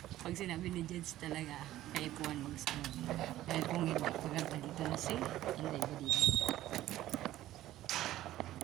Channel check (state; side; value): quieter; left; 14.4 dB